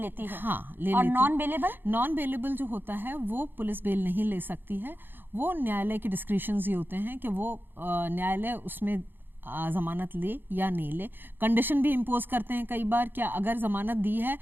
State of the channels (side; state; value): left; late; 0.096 ms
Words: है। हाँ, और नॉन बेलेबल? नॉन बेलेबल जो होता है वो पुलिस बेल नहीं ले सकती है, वो न्यायालय के डिस्क्रिशंस ही होते हैं कि वो न्यायालय उसमें जमानत ले या नहीं ले। कंडीशन भी इम्पोज करते हैं कई बार, क्या अगर जमानत दी है